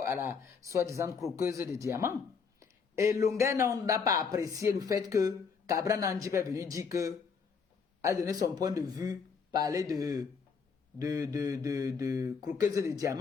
à la soi-disant croqueuse de diamants. Et Lunga n'a pas apprécié le fait que Cabral Nandi est venu dire que, a donné son point de vue, parler de croqueuse de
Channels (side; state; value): right; quieter; 5.7 dB